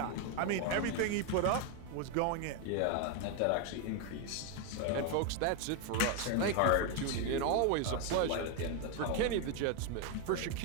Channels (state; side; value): different; both; correlation 0.01